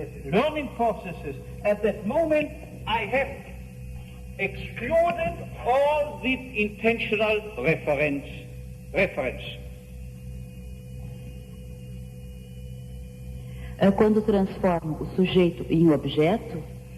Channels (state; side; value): identical; both; correlation 1.00